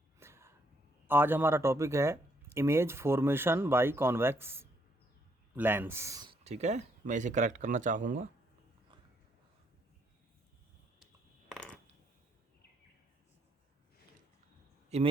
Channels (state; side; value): normal; both; correlation 0.72